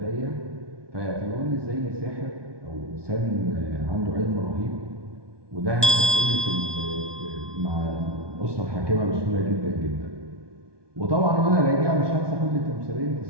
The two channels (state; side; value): late; left; 1.2 ms